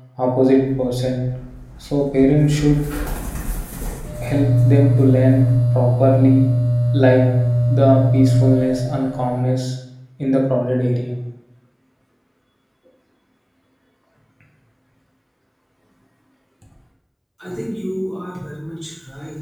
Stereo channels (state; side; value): identical; both; correlation 1.00